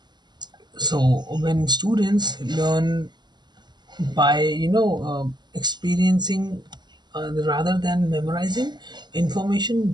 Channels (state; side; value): late; left; 0.21 ms